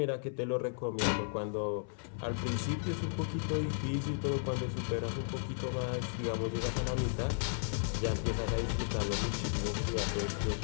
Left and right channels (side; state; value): right; silent; 55 dB below the other